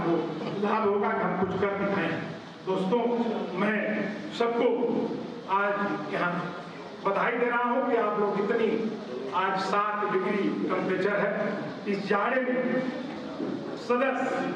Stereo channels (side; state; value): both; identical; correlation 1.00